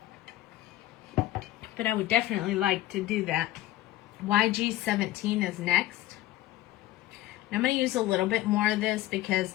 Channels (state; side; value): quieter; right; 15.5 dB